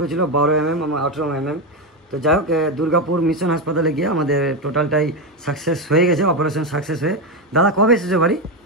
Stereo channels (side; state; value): both; normal; correlation 0.10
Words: ছিল 12 mm এবং 18 mm। তো যাই হোক, দুর্গাপুর মিশন হাসপাতালে গিয়ে আমাদের টোটালটাই সাকসেস হয়ে গেছে, অপারেশন সাকসেস হয়ে। দাদা কবে এসেছে বাড়ি?